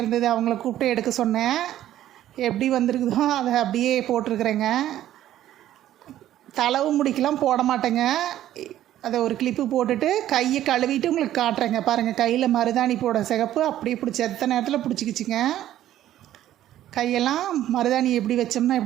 இருந்தது, அவங்கள கூப்பிட்டு எடுக்க சொன்னேன். எப்படி வந்திருக்குதோ அதை அப்படியே போட்டிருக்கிறேங்க. தளவு முடிக்கெலாம் போட மாட்டேங்க. அதை ஒரு கிளிப்பு போட்டுட்டு கையை கழுவிட்டு உங்களுக்கு காட்டுறேங்க. பாருங்கள், கையில் மருதாணி போட சிகப்பு அப்படியே பிடிச்சி எத்தனை நேரத்தில் பிடிச்சிக்கிச்சிங்க. கையெல்லாம் மருதாணி எப்படி வச்சோம்னா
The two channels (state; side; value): quieter; left; 12.6 dB